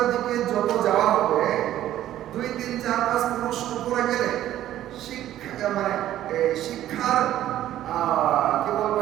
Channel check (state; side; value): quieter; left; 12.8 dB